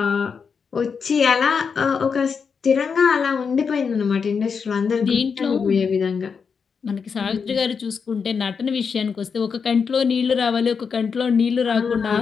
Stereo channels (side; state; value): right; quieter; 5.9 dB